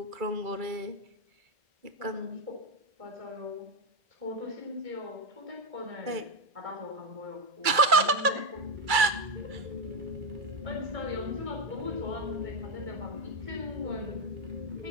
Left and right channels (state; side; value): late; left; 2.3 ms